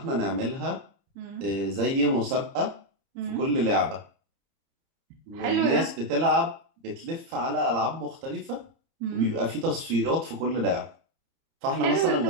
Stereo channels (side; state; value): left; late; 30 ms